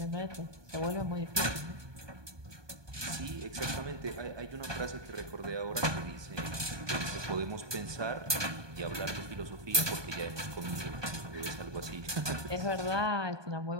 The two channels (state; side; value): late; left; 1.2 ms